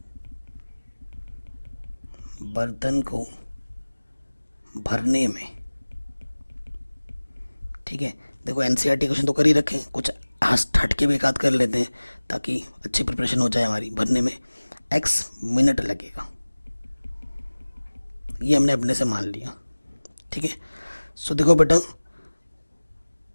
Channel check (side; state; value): both; inverted; correlation -1.00